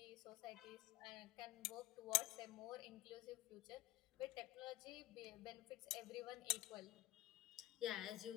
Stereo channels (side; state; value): right; quieter; 17.2 dB